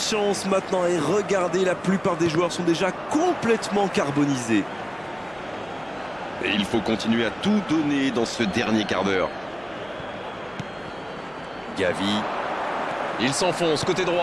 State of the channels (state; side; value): noise; right; hum, 26 dB below the sound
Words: maintenant et regardez, la plupart des joueurs sont déjà complètement carbonisés. Et il faut continuer à tout donner dans ce dernier quart d'heure. Gavi. Il s'enfonce côté